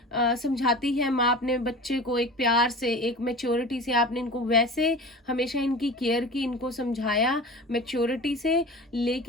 समझाती है माँ अपने बच्चे को, एक प्यार से, एक मैच्योरिटी से आपने इनको वैसे हमेशा इनकी केयर की, इनको समझाया मैच्योरिटी से,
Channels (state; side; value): normal; both; correlation 0.35